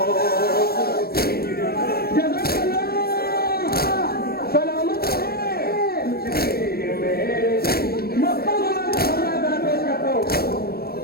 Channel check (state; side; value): late; right; 0.45 ms